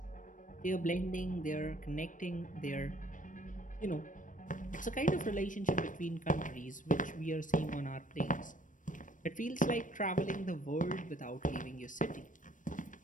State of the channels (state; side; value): late; right; 0.38 ms